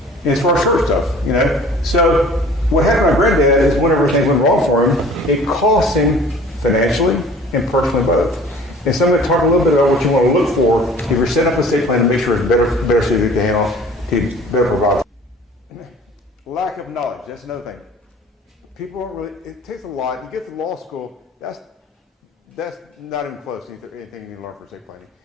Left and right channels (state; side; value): normal; both; correlation 0.48